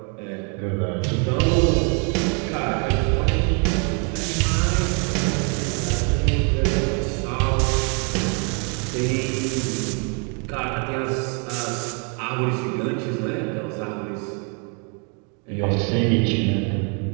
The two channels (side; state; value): left; quieter; 37.7 dB